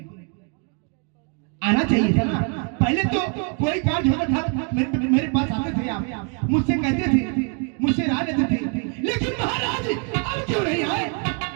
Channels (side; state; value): left; quieter; 38.0 dB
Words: आना चाहिए था ना। पहले तो कोई कार्य होता था, मेरे पास आते थे, आप मुझसे कहते थे, मुझसे राय लेते थे, लेकिन महाराज अब क्यों नहीं आए?